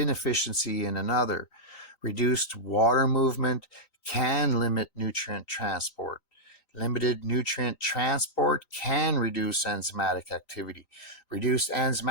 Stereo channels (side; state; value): right; late; 3.9 ms